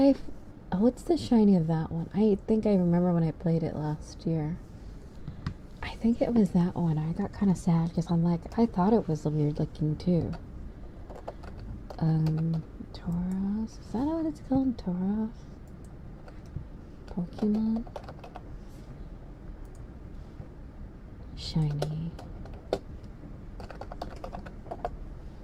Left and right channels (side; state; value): both; identical; correlation 1.00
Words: what's the shiny of that one? I think I remember when I played it last year. I think it was that one. I got kind of sad because I'm like, I thought it was weird looking too. Tauros? Is that what it's called? Tauros? Pokemon? Shiny.